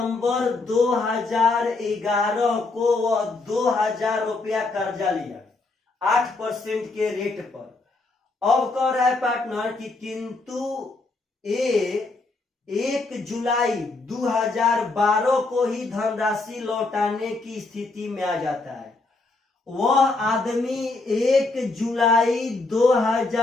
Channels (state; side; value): quieter; right; 3.4 dB